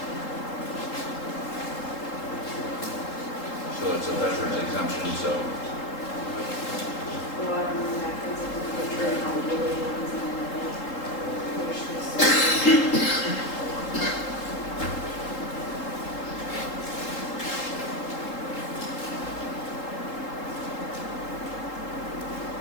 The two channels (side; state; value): right; late; 3.8 ms